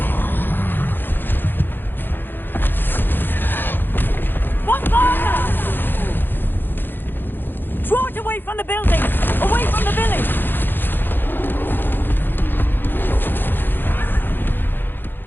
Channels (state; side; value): late; right; 0.097 ms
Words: Draw it away from the building! Away from the village!